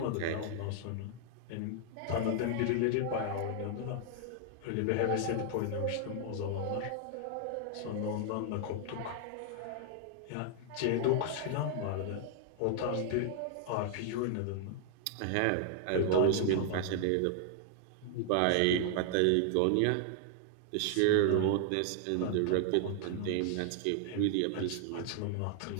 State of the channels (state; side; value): different; both; correlation 0.00